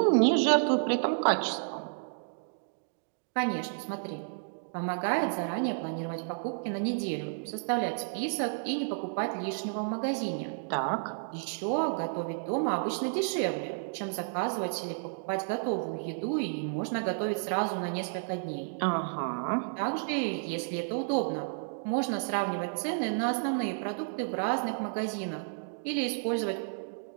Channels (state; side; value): silent; left; digital silence